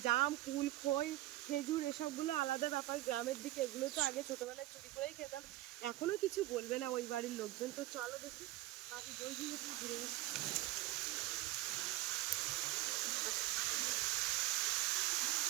জাম কুল খই খেজুর এসবগুলো আলাদা ব্যাপার, গ্রামের দিকে এগুলো তো আগে ছোটবেলায় চুরি করেই খেতাম। এখনো কিছু বলবে না ওই বাড়ির লোকজন। তো চলো দেখি বাকি বই দিয়ে একটু ঘুরে আসি।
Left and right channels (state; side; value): quieter; left; 16.7 dB